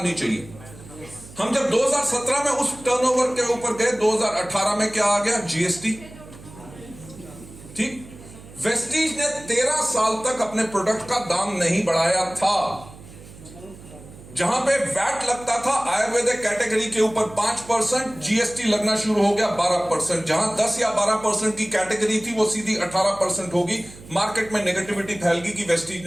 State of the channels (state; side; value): noise; right; hum, 19 dB below the sound